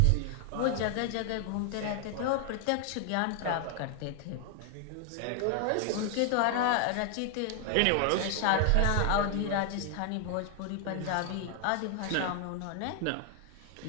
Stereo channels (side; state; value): both; different; correlation 0.00